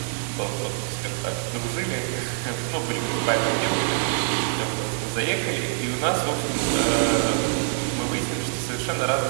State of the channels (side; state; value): left; silent; 56 dB below the other